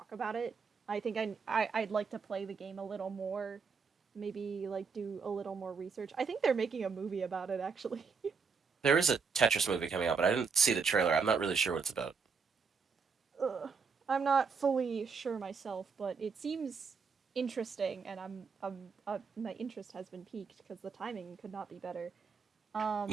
about it. I think I'd like to play the game a little more, maybe like do a little more research. I think they're making a movie about it actually. There is a Tetris movie coming out, but I didn't see the trailer. I'm not really sure what it's about. Ugh. I'm not fully sure myself, but it seems interesting, and my interest has been piqued because the timing could not be better. Um,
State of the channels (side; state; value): left; quieter; 5.4 dB